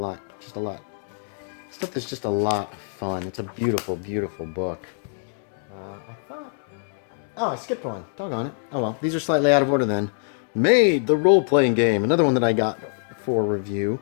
stuff that's just a lot of fun. It's a beautiful, beautiful book. I skipped one. Doggone it. Oh well, these are slightly out of order then. Maid, the role-playing game. Another one that I got for review.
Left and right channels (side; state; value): right; silent; 62 dB below the other